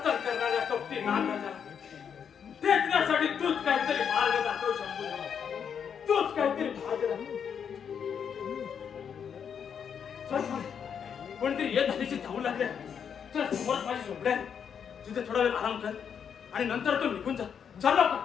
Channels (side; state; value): right; quieter; 7.5 dB